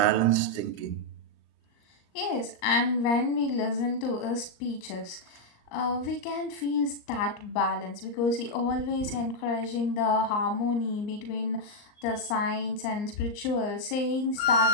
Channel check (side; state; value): right; late; 39 ms